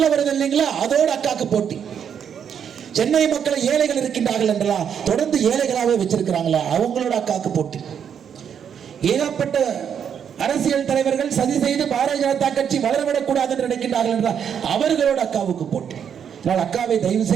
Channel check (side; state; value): left; quieter; 8.0 dB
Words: வருது இல்லைங்களா, அதோட அக்காக்கு போட்டி. சென்னை மக்களை ஏழைகள் இருக்கின்றார்கள் என்றா தொடர்ந்து ஏழைகளாவே வச்சிருக்கிறாங்களா, அவங்களோட அக்காக்கு போட்டி. ஏகப்பட்ட அரசியல் தலைவர்கள் சதி செய்து பாரதிய ஜனதா கட்சி வளரவிடக்கூடாது என்று நினைக்கின்றார்கள் என்றால் அவர்களோட அக்காவுக்கு போட்டி. அக்காவை தயவு